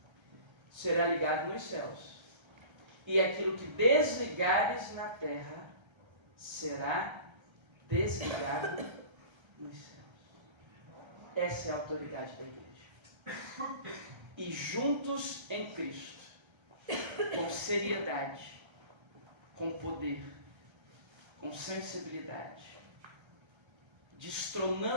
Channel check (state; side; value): late; left; 1.3 ms